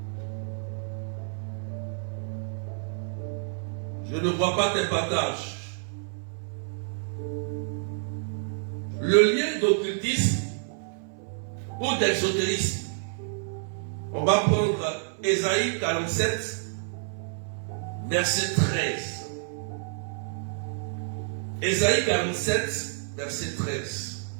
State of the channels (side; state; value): left; silent; 59 dB below the other